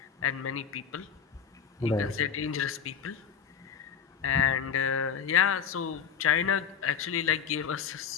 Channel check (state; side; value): quieter; right; 7.3 dB